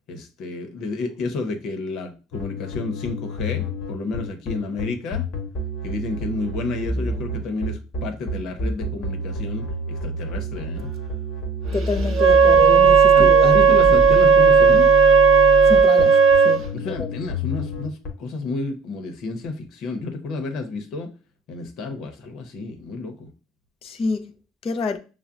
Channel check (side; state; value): left; quieter; 4.0 dB